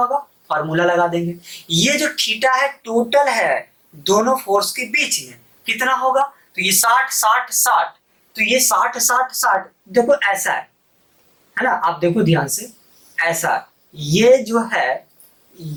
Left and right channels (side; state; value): both; identical; correlation 1.00